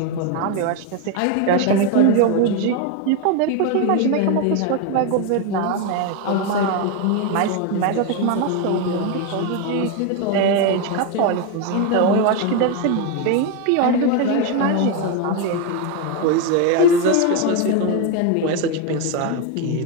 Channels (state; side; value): different; both; correlation 0.02